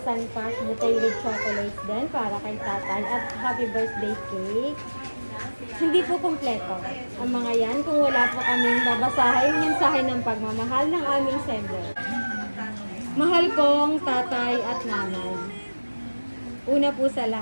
cash with chocolates din para kay tatay at happy birthday cake. Hindi po kumpleto ang mga yan kung wala po kaming babasahin mensahe ng pagmamahal ng aming sender. Mahal kong tatay at nanay. Una po sa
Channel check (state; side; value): inverted; both; correlation -1.00